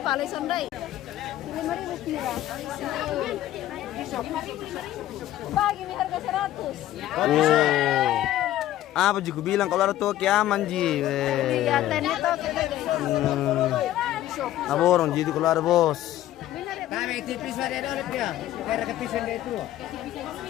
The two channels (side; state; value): right; quieter; 13.7 dB